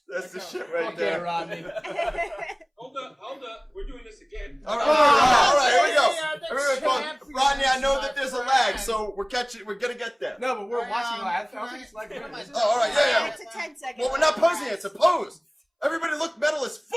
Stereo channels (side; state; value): both; identical; correlation 1.00